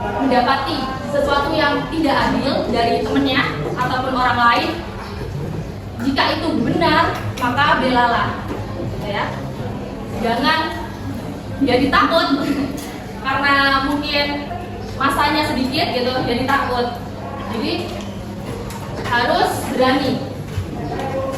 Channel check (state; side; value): identical; both; correlation 1.00